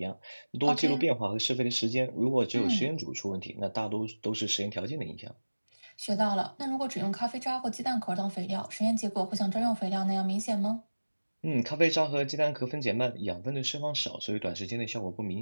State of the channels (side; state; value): both; inverted; correlation -1.00